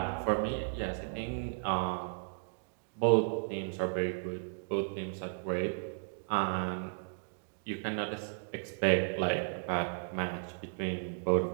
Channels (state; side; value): silent; left; digital silence